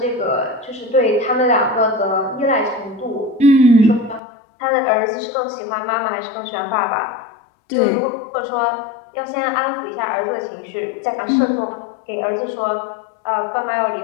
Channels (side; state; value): right; drops out; at 4.2 s